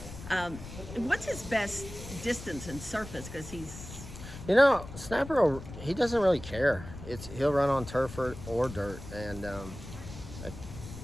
what's his best distance and surface? Because he's... Snapper, he doesn't really care. He'll run on turf or dirt. And,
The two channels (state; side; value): noise; left; rumble, 12 dB below the sound